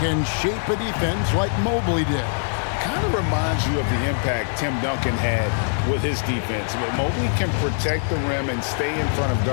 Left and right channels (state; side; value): silent; right; 59 dB below the other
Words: shape a defense like Mobley did. Kind of reminds you of the impact Tim Duncan had with his defense. But Mobley can protect the rim and stay in front of